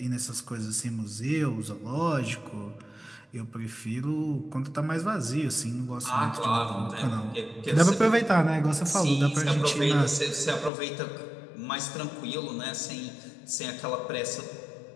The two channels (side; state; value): right; drops out; at 10.7 s